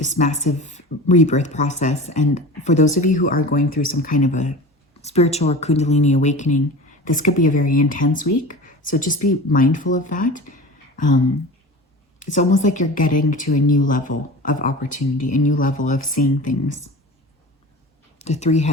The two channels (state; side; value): normal; both; correlation 0.34